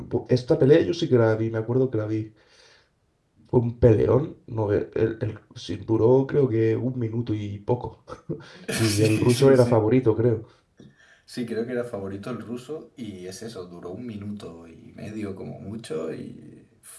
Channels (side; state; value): both; identical; correlation 1.00